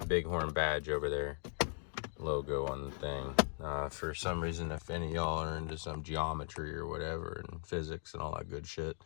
BigHorn badge over there. Logo on the thing. For some reason, if any of y'all are into some geometry or whatever and physics and all that good shit,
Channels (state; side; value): silent; right; 52 dB below the other